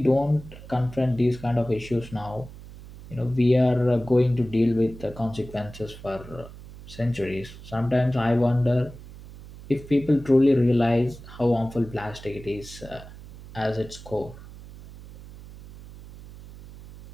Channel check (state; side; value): noise; right; hum, 17 dB below the sound